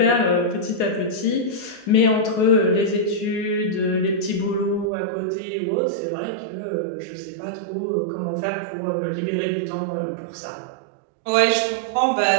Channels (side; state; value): left; drops out; at 4.9 s